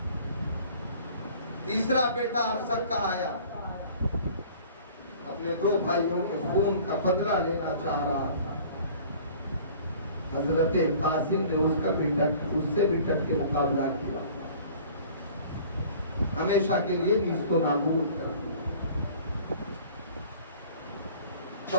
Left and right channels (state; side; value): inverted; both; correlation -0.49